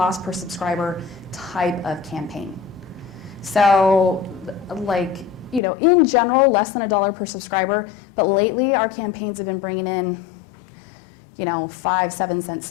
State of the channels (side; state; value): right; drops out; at 5.6 s